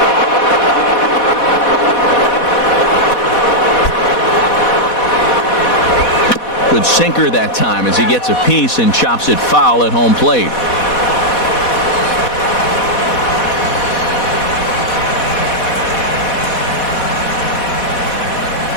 Good sinker that time as he gets a piece and chops it foul at home plate.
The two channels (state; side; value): late; right; 4.1 ms